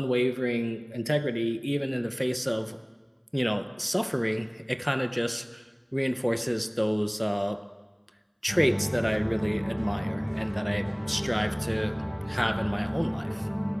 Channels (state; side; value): identical; both; correlation 1.00